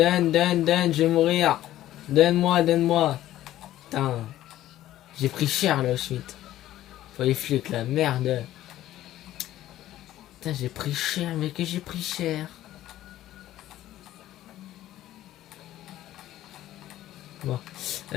je vais mourir. Donne-moi. Putain. J'ai pris cher là, Schmitt. Faut les flics là, merde. Putain, j'ai pris cher, mais que j'ai pris cher. Bon.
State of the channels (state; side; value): quieter; right; 13.8 dB